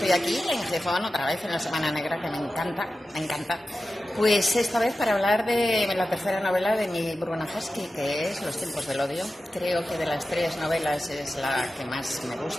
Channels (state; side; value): normal; both; correlation 0.93